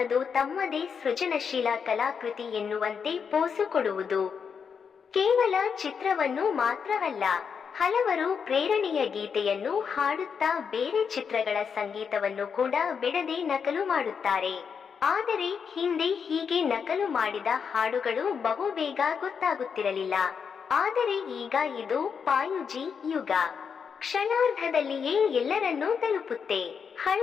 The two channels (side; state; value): right; quieter; 6.5 dB